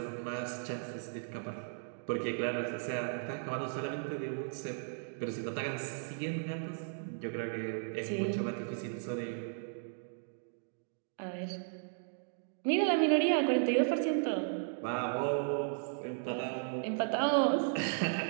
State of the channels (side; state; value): left; silent; digital silence